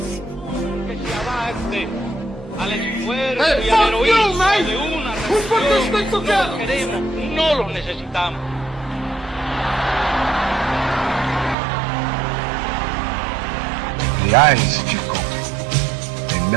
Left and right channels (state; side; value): drops out; left; at 11.6 s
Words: Hey, fuck you, man! Who put this thing together? No los necesitamos. The eyes, Chico. They